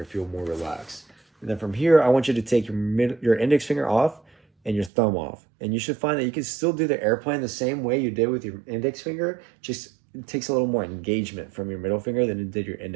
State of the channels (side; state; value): left; drops out; at 4.9 s